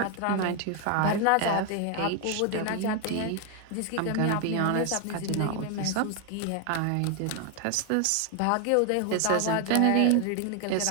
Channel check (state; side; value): different; both; correlation 0.01